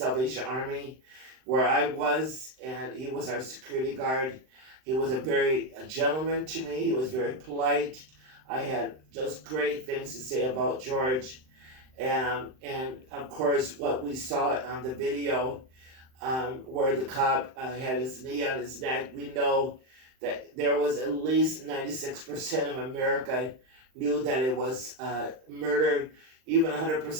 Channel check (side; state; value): left; late; 39 ms